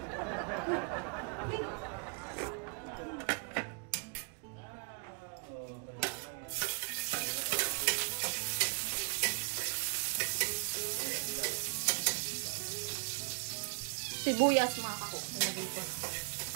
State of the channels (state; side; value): quieter; left; 35.8 dB